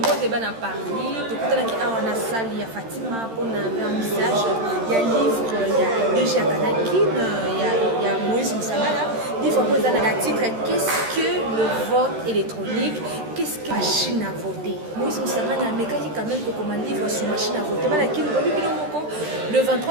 débat à Paris, tout on a salle, il y a Fatima pour un vernissage, il y a livre, il y a déjà Kanakin, il y a Moïse Moussamala. Livre pour un titre, qu'est-ce que le vote électronique, qu'est-ce que la machine à voter. Moïse Moussamala, mais quand il quand même comme un livre sur machine à voter, le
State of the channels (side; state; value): left; late; 13 ms